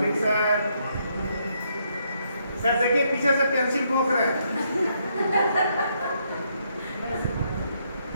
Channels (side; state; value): both; inverted; correlation -0.75